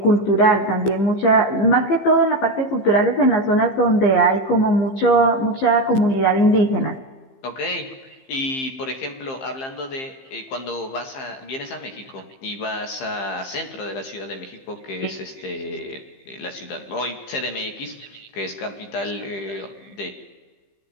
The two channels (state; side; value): late; right; 15 ms